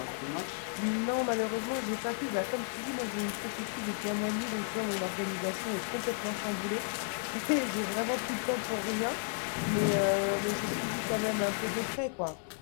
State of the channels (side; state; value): right; silent; 56 dB below the other